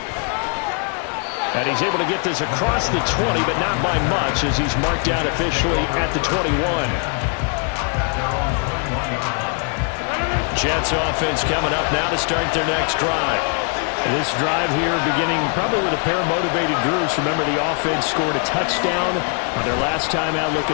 And he's able to get this across the 20, but not by much, as he's marked down officially at the 21. Jets offense coming up now to start their next drive. This drive here beginning probably with a pair of motivated groups. Remember, the offense scored a touchdown on their last time out,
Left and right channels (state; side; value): quieter; right; 39.2 dB